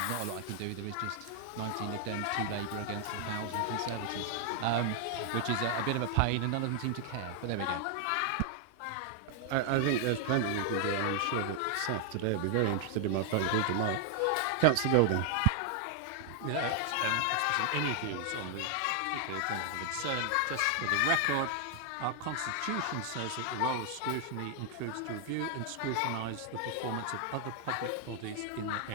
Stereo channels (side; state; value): both; different; correlation 0.00